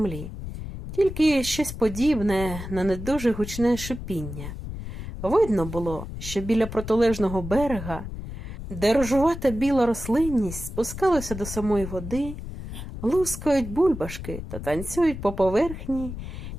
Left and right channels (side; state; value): left; noise; rumble, 9 dB below the sound